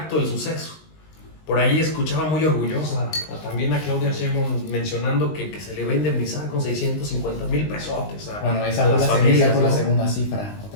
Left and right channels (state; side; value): late; right; 19 ms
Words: el suceso. Por ahí escuchaba muy orgullosa también a Claudia Sheinbaum mencionando que se le va a indemnizar con 650,000 pesotes a, Bueno, esa a fue las la familias, segunda, ¿no? la segunda cifra, o